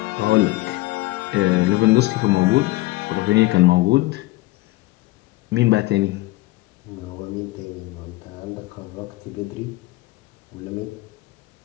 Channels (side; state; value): right; quieter; 19.5 dB